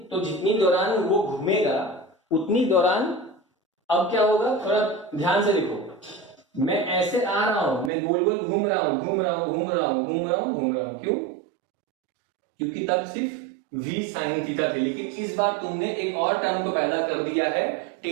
दौरान वो घूमेगा उतनी दौरान अब क्या होगा, थोड़ा ध्यान से देखो, मैं ऐसे आ रहा हूं, मैं गोल गोल घूम रहा हूं, घूम रहा हूं, घूम रहा हूं, घूम रहा हूं, घूम रहा हूं, क्यों? क्योंकि तब सिर्फ v sin थीटा थे, लेकिन इस बार तुमने एक और टर्म को पैदा कर दिया है,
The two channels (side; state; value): left; drops out; at 7.9 s